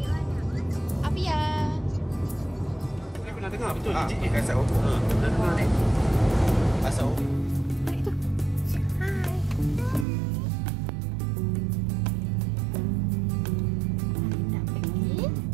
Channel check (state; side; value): drops out; left; at 10.1 s